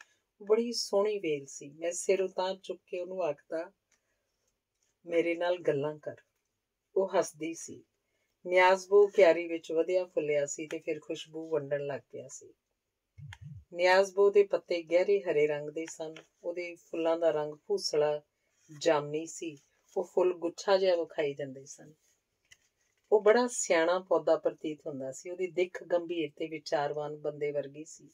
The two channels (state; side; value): identical; both; correlation 1.00